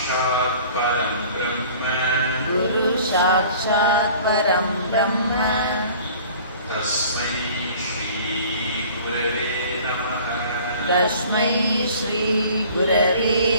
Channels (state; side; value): inverted; both; correlation -0.48